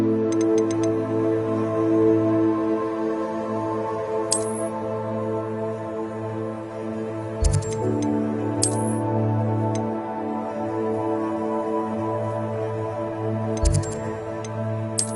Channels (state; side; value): identical; both; correlation 1.00